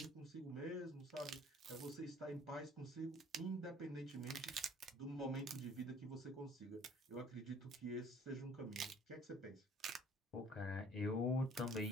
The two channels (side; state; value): both; normal; correlation 0.54